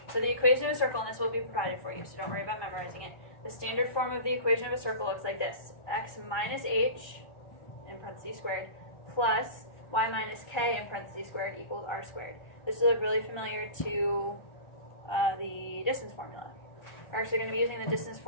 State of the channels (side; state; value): right; late; 1.4 ms